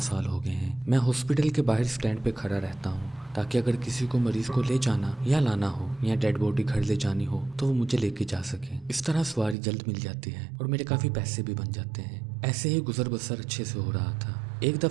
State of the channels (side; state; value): left; drops out; at 9.6 s